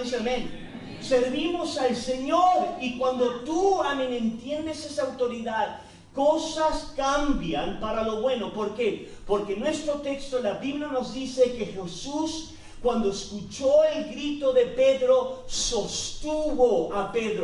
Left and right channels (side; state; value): both; identical; correlation 1.00